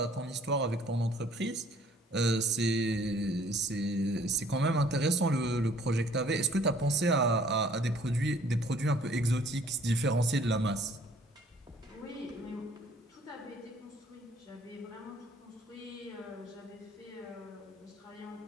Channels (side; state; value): both; normal; correlation 0.58